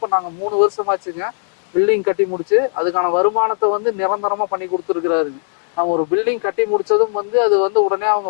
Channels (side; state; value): right; silent; 63 dB below the other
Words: நாங்க 3 வருஷமாச்சுங்க பில்டிங் கட்டி முடிச்சு அதுக்கான வருமானத்தை வந்து நிரந்தரமா பண்ணி கொடுத்துருக்கிறாருங்க. நம்ம ஒரு பில்டிங் கட்டி முடிச்சதும் வந்து அது வந்து உடனே அவங்க